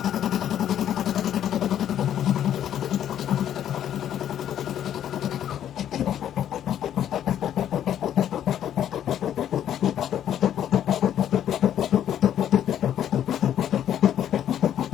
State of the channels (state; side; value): quieter; right; 10.5 dB